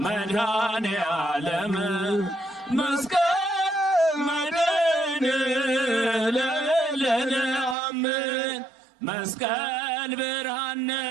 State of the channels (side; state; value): left; drops out; at 7.8 s